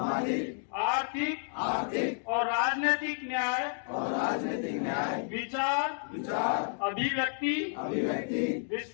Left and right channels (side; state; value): right; silent; digital silence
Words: आर्थिक और राजनीतिक न्याय, विचार, अभिव्यक्ति,